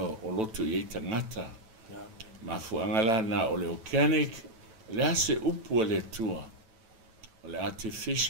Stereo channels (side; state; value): left; late; 9.1 ms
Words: loto i eita ngata ma fuangala na o le organic le ase upu o le atua o le